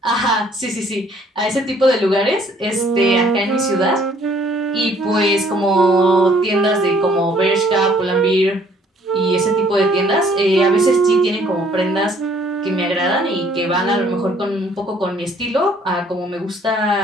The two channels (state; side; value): normal; both; correlation 0.61